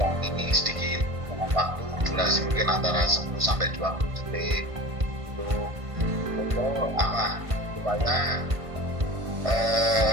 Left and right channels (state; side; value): late; left; 1.5 ms